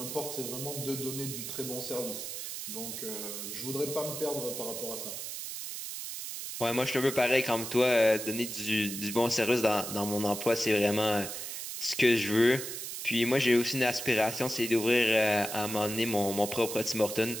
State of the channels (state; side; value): noise; right; hiss, 7 dB below the sound